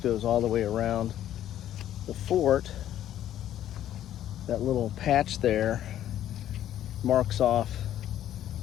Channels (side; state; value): right; quieter; 11.7 dB